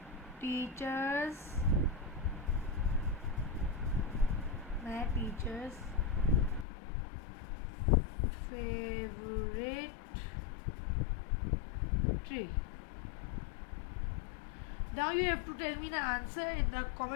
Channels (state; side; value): drops out; right; at 6.7 s